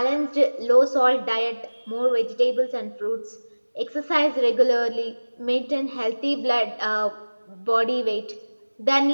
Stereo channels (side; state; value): both; inverted; correlation -1.00